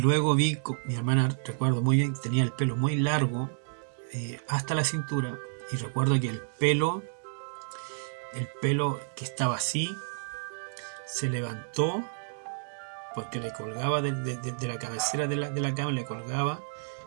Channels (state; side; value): silent; left; digital silence